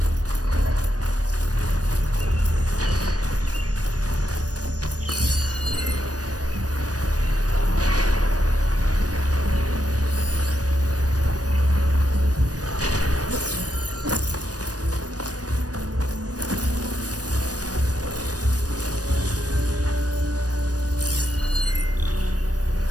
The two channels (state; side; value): late; left; 0.68 ms